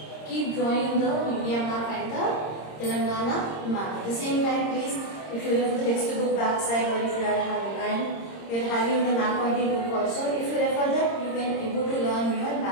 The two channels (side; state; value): right; late; 26 ms